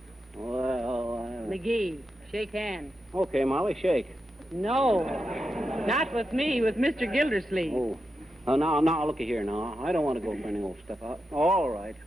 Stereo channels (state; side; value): normal; both; correlation 0.88